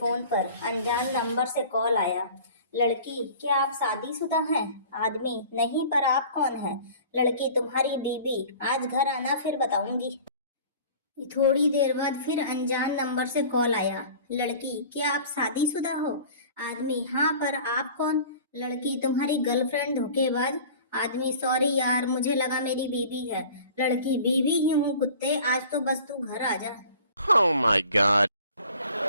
पर अनजान नंबर से कॉल आया। लड़की, क्या आप शादीशुदा हैं? आदमी, नहीं, पर आप कौन हैं? लड़की, तुम्हारी बीवी। आज घर आना, फिर बताऊंगी। थोड़ी देर बाद फिर अनजान नंबर से कॉल आया। लड़की, क्या आप शादीशुदा हो? आदमी, हाँ, पर आप कौन? लड़की, तुम्हारी गर्लफ्रेंड धोखेबाज। आदमी, सॉरी यार, मुझे लगा मेरी बीवी है। लड़की, बीवी ही हूँ कुत्ते, आज तो बस तू घर आ जा। Oh my god.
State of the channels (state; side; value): inverted; both; correlation -0.45